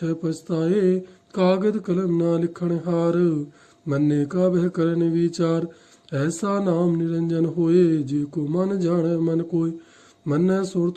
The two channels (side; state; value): both; identical; correlation 1.00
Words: ਪਛਤਾਏ। ਕਾਗਦ ਕਲਮ ਨਾ ਲਿਖਣ ਹਾਰ, ਮੰਨੇ ਕਾ ਬਹਿ ਕਰਨ ਵਿਚਾਰ। ਐਸਾ ਨਾਮ ਨਿਰੰਜਨ ਹੋਏ, ਜੇ ਕੋ ਮਨ ਜਾਣੈ ਮਨ ਕੋਇ। ਮੰਨੈ